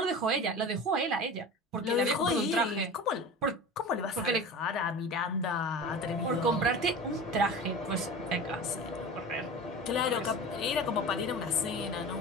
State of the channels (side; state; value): both; normal; correlation 0.33